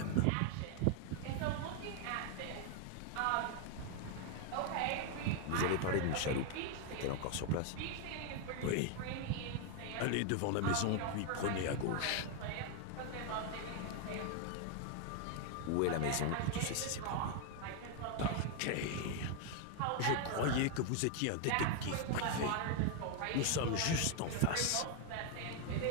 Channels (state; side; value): different; both; correlation 0.00